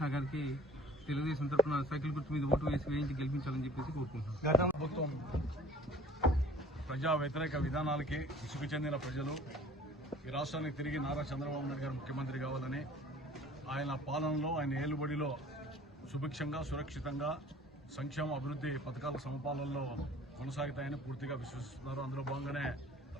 గారికి తెలుగుదేశం తరఫున సైకిల్ గుర్తు మీద ఓటు వేయించి గెలిపించాలని చెప్పేసి కోరుకుంటున్నాను. గత ప్రభుత్వం ప్రజా వ్యతిరేక విధానాలకి విసుగు చెందిన ప్రజలు ఈ రాష్ట్రానికి తిరిగి నారా చంద్రబాబు నాయుడు గారు ముఖ్యమంత్రి కావాలని, ఆయన పాలనలో ఆయన ఏలుబడిలో సుభిక్షంగా సురక్షితంగా సంక్షేమ అభివృద్ధి పథకాల సమపాలనలో కొనసాగుతాయని పూర్తిగా విశ్వసిస్తున్నారు. అందులో భాగంగానే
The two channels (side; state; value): both; normal; correlation 0.49